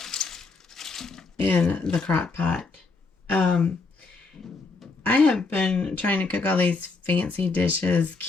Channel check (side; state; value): right; quieter; 4.0 dB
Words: in the crock pot. I have been trying to cook all these fancy dishes,